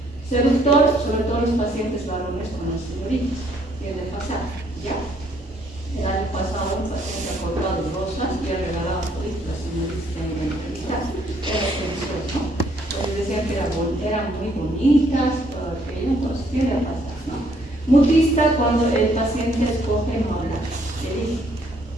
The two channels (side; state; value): both; normal; correlation 0.67